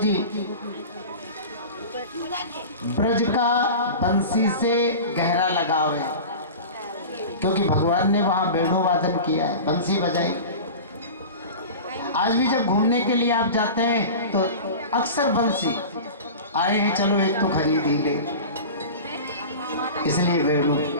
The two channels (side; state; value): both; inverted; correlation -0.33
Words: ब्रज का बंसी से गहरा लगाव है, क्योंकि भगवान ने वहां वेणु वादन किया है, बंसी बजाई। आज भी जब घूमने के लिए आप जाते हैं तो अक्सर बंसी आए हैं, चलो एक तो खरीद ही ले, इसलिए वेणु।